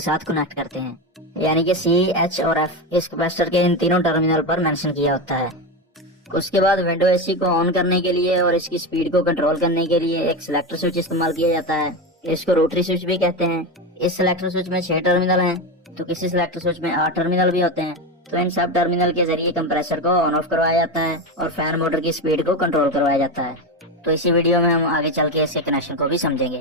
कनेक्ट करते हैं, यानी कि सी, एच और एफ इस कैपेसिटर के इन तीनों टर्मिनल पर मेंशन किया होता है। उसके बाद विंडो एसी को ऑन करने के लिए और इसकी स्पीड को कंट्रोल करने के लिए एक सिलेक्टर स्विच इस्तेमाल किया जाता है। इसको रोटरी स्विच भी कहते हैं। इस सिलेक्टर स्विच में 6 टर्मिनल हैं, तो किसी सिलेक्टर स्विच में 8 टर्मिनल भी होते हैं। तो इन सब टर्मिनल के जरिए कंप्रेसर को ऑन ऑफ करवाया जाता है और फैन मोटर की स्पीड को कंट्रोल करवाया जाता है। तो इसी वीडियो में हम आगे चल के इसके कनेक्शन को भी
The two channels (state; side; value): normal; both; correlation 0.16